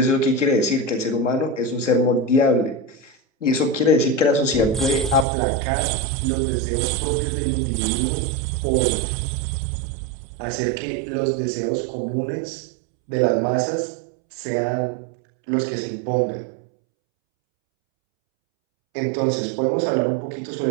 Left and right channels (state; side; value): drops out; left; at 5.2 s